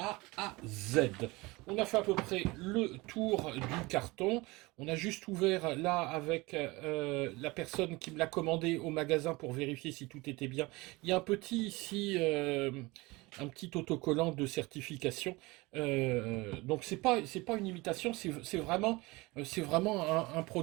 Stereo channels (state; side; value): quieter; left; 22.8 dB